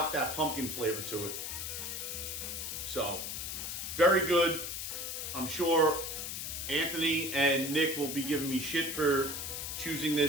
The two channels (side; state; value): left; noise; hiss, 5 dB below the sound